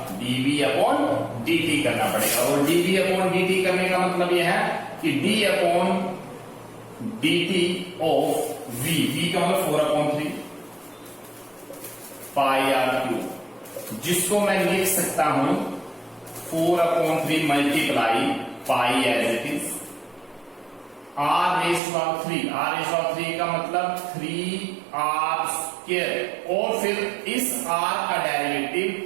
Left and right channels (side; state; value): left; drops out; at 21.8 s